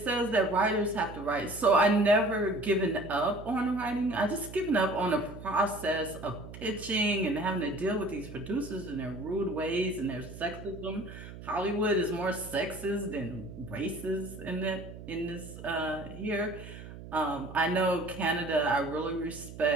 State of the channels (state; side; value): noise; right; hum, 13 dB below the sound